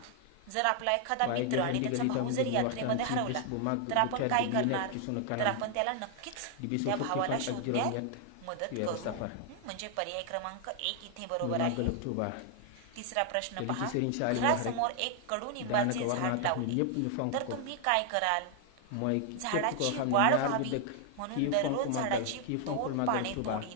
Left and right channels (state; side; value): different; both; correlation 0.00